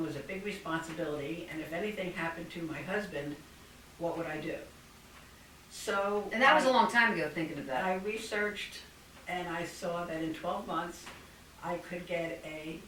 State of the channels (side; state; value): both; identical; correlation 1.00